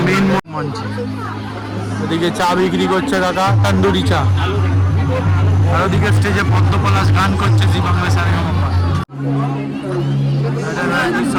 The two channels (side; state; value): both; identical; correlation 1.00